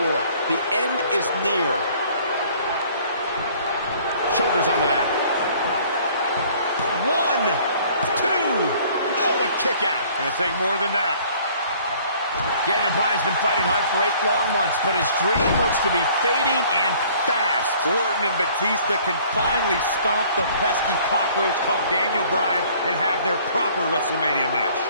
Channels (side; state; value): both; inverted; correlation -0.55